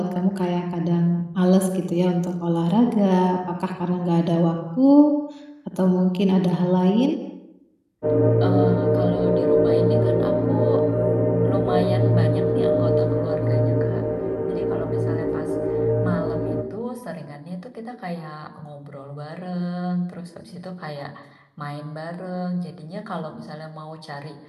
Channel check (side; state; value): both; identical; correlation 1.00